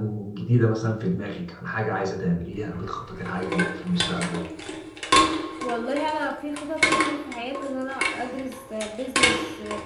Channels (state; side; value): identical; both; correlation 1.00